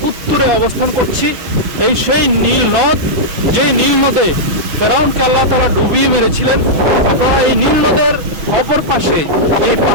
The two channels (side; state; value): left; late; 6.1 ms